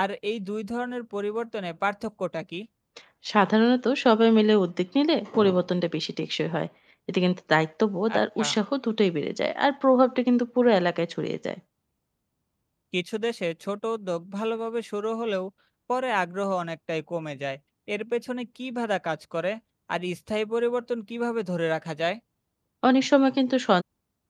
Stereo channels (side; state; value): both; identical; correlation 1.00